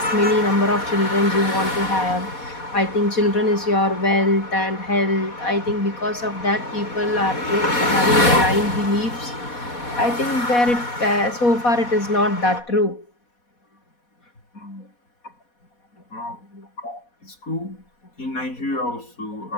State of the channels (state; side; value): late; right; 4.2 ms